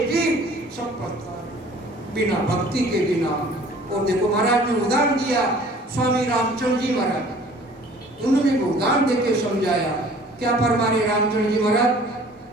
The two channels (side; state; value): both; normal; correlation 0.51